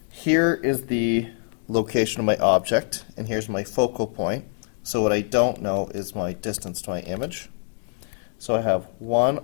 here is the location of my object, and here's my focal point. So what I don't know is my distance to my image. So I have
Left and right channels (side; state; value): right; silent; digital silence